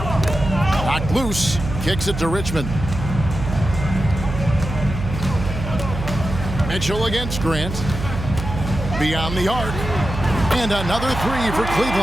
Knocked loose. Kicks it to Richmond. Mitchell against Grant. Beyond the arc. And another 3 for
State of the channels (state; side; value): noise; right; hum, 6 dB below the sound